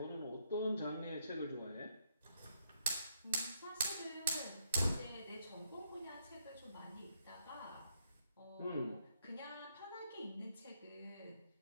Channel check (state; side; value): inverted; both; correlation -0.74